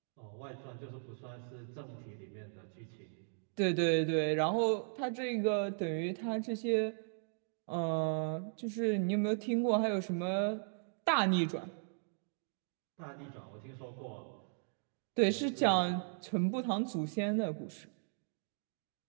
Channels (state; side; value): silent; left; digital silence